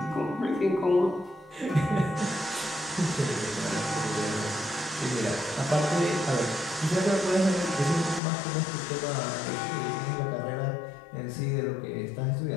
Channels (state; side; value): drops out; right; at 8.2 s